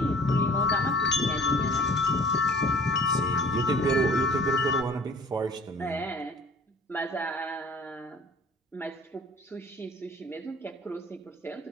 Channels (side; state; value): both; normal; correlation 0.49